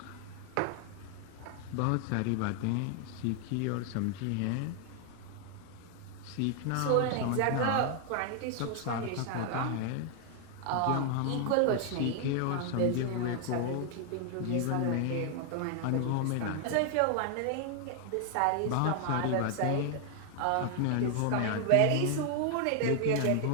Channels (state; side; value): different; both; correlation 0.00